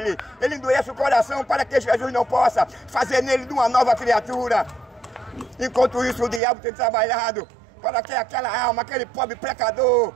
Ele endurece o coração para que Jesus não possa fazer nele de uma nova criatura. Enquanto isso, o diabo tem trabalhado para que aquela alma, aquele pobre pecador,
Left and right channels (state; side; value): drops out; left; at 6.4 s